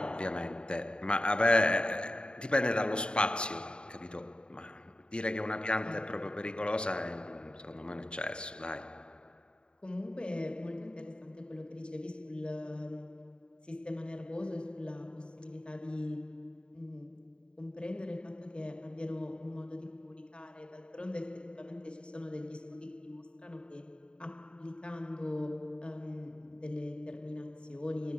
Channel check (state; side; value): late; right; 0.051 ms